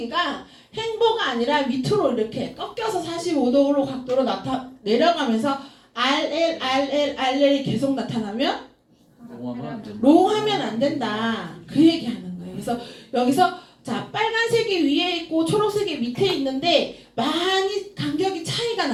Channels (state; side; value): identical; both; correlation 1.00